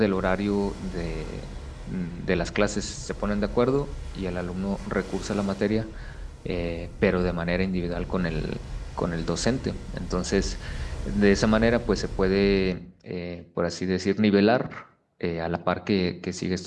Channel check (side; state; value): both; identical; correlation 1.00